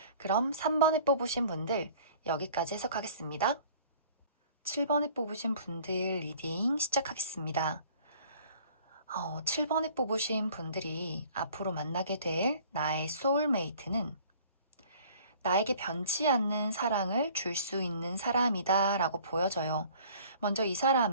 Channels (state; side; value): inverted; both; correlation -0.51